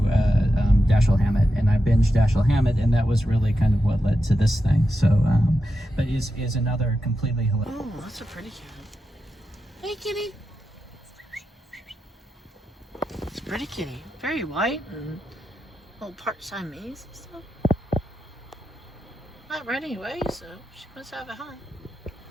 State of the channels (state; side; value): normal; both; correlation 0.88